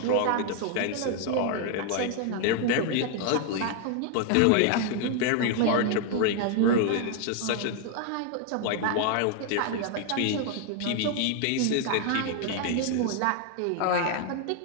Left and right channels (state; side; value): different; both; correlation 0.00